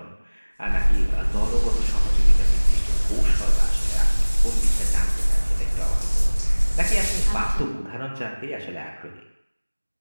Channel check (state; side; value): inverted; both; correlation -1.00